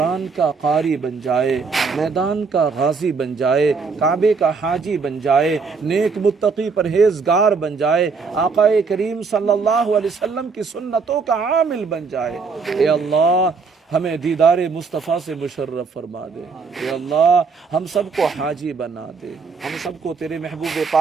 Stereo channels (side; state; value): left; quieter; 4.9 dB